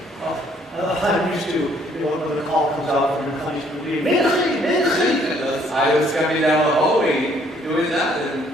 I'm used to, when the call comes out from the country, I was coming down the hallway doing that. And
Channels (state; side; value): normal; both; correlation 0.64